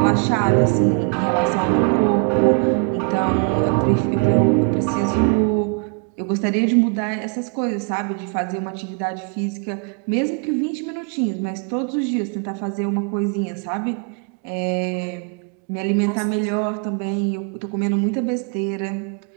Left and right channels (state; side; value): quieter; left; 36.8 dB